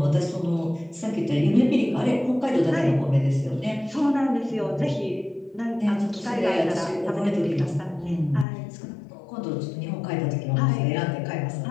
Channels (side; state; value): right; drops out; at 8.5 s